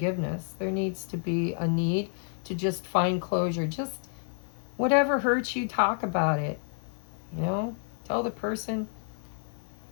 There needs to be a need to just find closure. Just whatever hurts you, talk about it. You know, tell the person,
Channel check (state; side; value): silent; right; 58 dB below the other